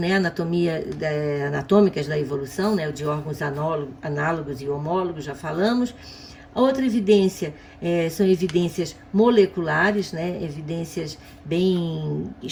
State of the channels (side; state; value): both; identical; correlation 1.00